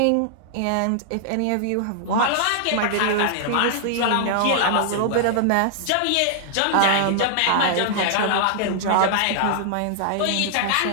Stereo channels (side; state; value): both; different; correlation -0.01